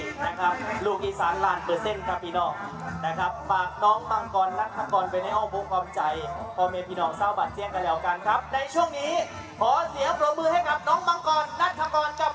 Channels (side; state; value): both; identical; correlation 1.00